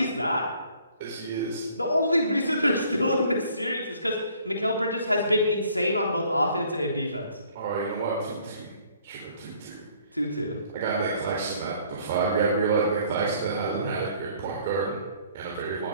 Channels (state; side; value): inverted; both; correlation -0.59